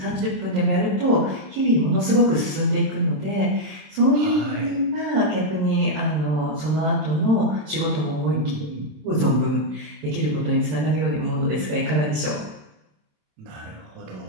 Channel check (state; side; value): late; left; 26 ms